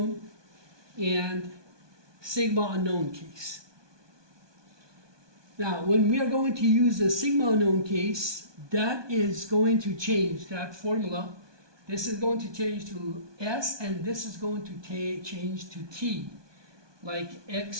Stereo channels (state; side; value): late; left; 1.2 ms